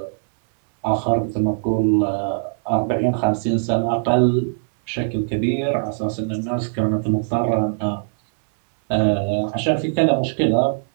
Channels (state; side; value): silent; left; 65 dB below the other